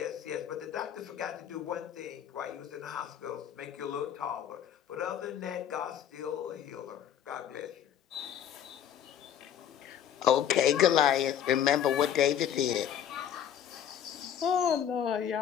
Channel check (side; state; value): right; quieter; 9.7 dB